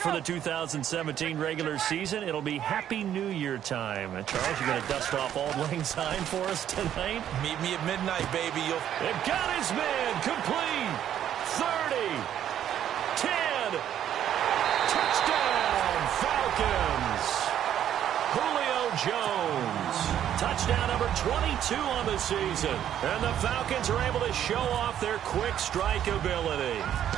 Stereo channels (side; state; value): left; quieter; 10.5 dB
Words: the 2017 regular season. It'll be Happy New Year time. Charles, you're going to dust off Auld Lang Syne for us tonight? Meet me at midnight, baby. It got his man complete. 30. 10. Touchdown, Falcons. Julio Jones. Touchdown number 22 on the season. And the Falcons are able to show off their quick strike ability.